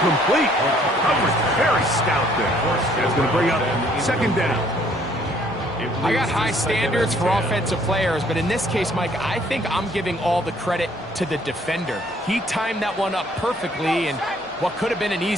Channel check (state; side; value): normal; both; correlation 0.62